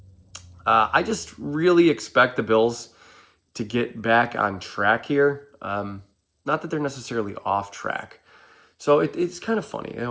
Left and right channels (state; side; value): identical; both; correlation 1.00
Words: I just really expect the Bills to get back on track here. Not that they're necessarily off track. So it's kind of funny.